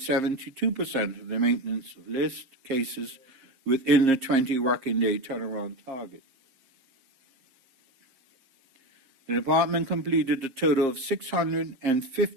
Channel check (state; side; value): late; left; 7.5 ms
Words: 72% of the maintenance of list cases within the 20 working day turnaround target. The department completed a total of